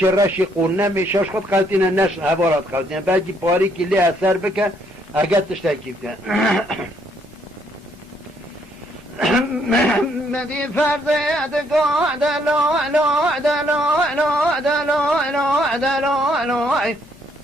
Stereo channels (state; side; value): normal; both; correlation 0.69